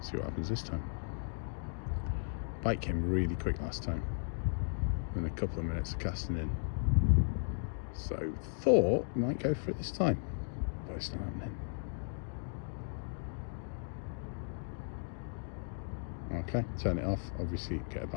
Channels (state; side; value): silent; right; digital silence